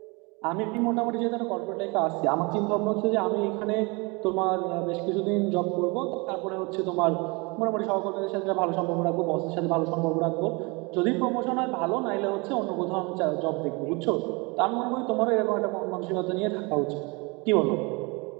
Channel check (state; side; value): quieter; left; 28.0 dB